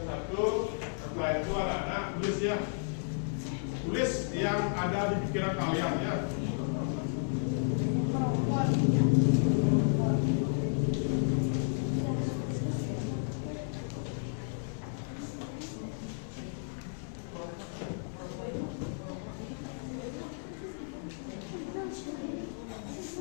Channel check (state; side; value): silent; right; 56 dB below the other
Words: satu, setelah itu anak-anak tulis ya. Tulis yang ada di pikiran kalian ya.